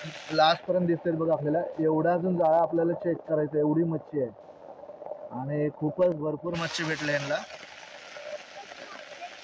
लास्टपर्यंत दिसतील बघा आपल्याला. एवढा अजून जाळा आपल्याला चेक करायचा, एवढी मच्छी आहे आणि खूपच भरपूर मच्छी भेटले यांना.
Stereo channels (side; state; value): both; identical; correlation 1.00